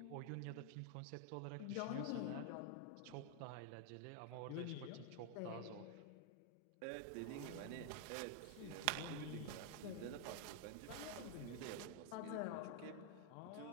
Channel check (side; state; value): both; different; correlation 0.00